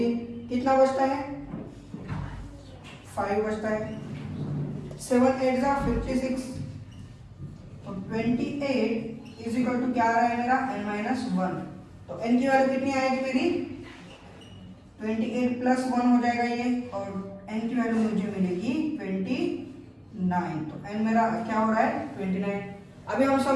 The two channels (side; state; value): both; identical; correlation 1.00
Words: कितना बचता है? 5 बचता है। 7 8 जा 56, तो 28 इज इक्वल टू क्या आ रहा है मेरा? n minus 1। तो n की वैल्यू कितनी आएगी मेरी? 28 प्लस 1 हो जाएगा ये, और n की वैल्यू मुझे मिलेगी 29। तो n मेरा क्या हो रहा है? 29। अभी हम